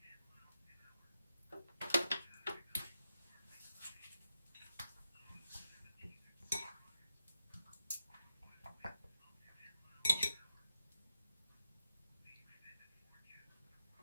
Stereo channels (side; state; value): both; inverted; correlation -0.88